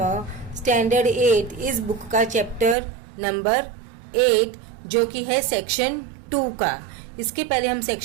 standard 8 इस बुक का चैप्टर नंबर 8 जो कि है सेक्शन 2 का। इसके पहले हम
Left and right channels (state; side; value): drops out; left; at 2.8 s